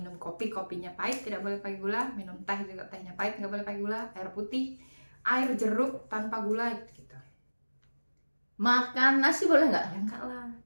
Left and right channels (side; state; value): both; inverted; correlation -1.00